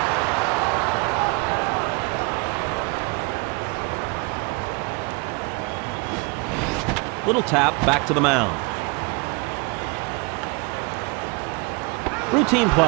Little tap back to the mound. Routine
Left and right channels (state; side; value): quieter; left; 30.1 dB